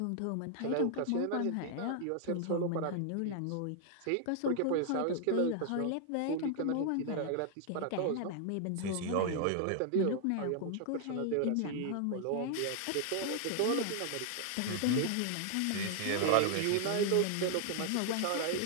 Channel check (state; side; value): different; both; correlation 0.00